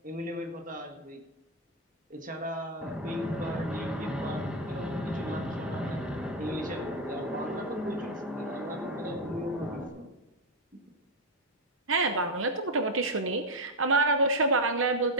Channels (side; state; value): both; normal; correlation 0.04